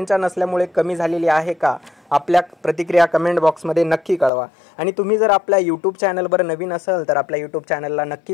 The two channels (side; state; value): right; drops out; at 4.3 s